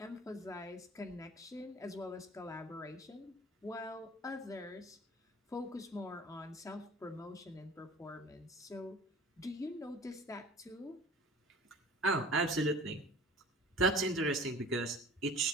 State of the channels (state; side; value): normal; both; correlation 0.44